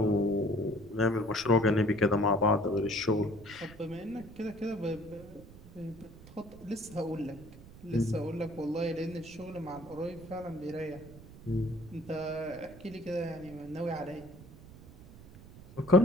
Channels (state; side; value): noise; right; rumble, 18 dB below the sound